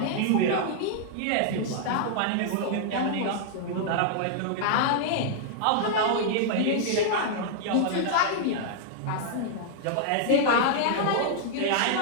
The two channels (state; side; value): different; both; correlation -0.01